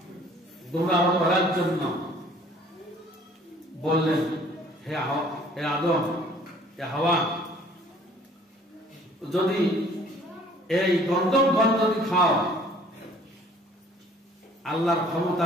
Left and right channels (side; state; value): both; normal; correlation 0.55